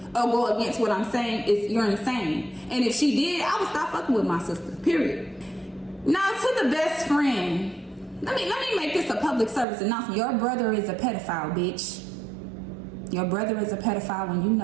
or go against what I'm saying is you're insane. And if she did, I would stop fucking with my sister, period. Now to the best friend. Let me make this a public service announcement. Your brother is a pedophile, bitch. Your brother is a pedophile and you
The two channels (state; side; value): drops out; left; at 9.7 s